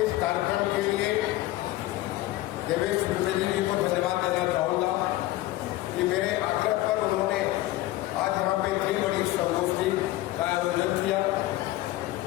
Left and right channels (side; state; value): right; quieter; 16.5 dB